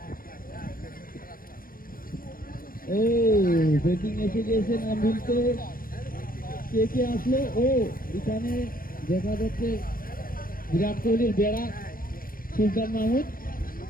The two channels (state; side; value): late; right; 0.41 ms